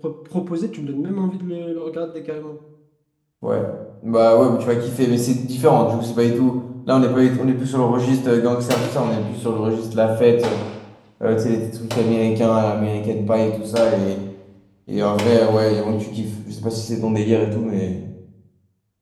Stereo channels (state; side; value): identical; both; correlation 1.00